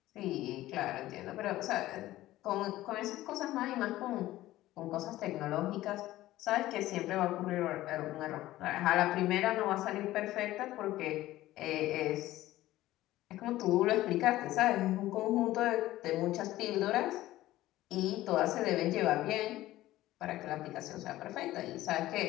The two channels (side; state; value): right; quieter; 15.8 dB